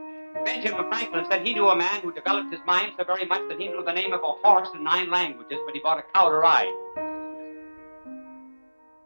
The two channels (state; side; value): inverted; both; correlation -1.00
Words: Benjamin Franklin said he knew a man who developed his mind so very much that he knew the name of a horse in 9 languages, but he bought a cow to ride.